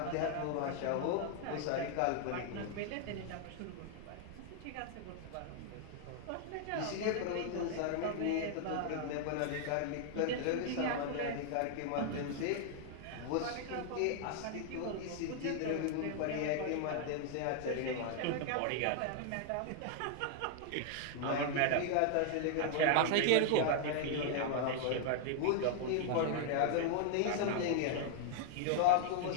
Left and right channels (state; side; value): different; both; correlation 0.00